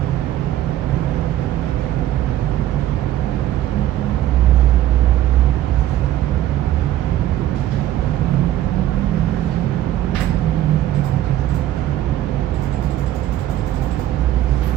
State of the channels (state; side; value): quieter; left; 13.1 dB